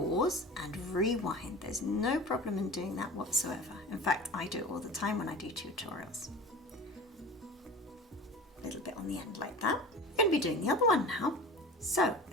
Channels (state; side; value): normal; both; correlation 0.37